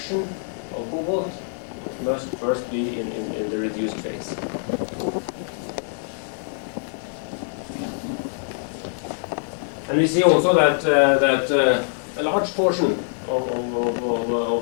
of cobalt, it must first be in the reduced phase. And we see also that a large portion of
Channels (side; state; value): right; silent; digital silence